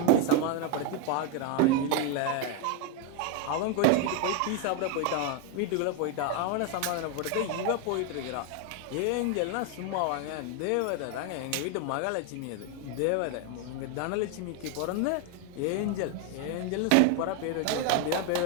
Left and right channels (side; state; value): both; different; correlation 0.01